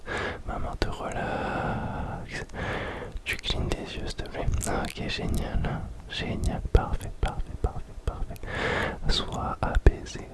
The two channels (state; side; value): identical; both; correlation 1.00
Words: main te relaxe. Tu clignes tes yeux, s'il te plaît. Ok, génial. Parfait. Sois apaisé,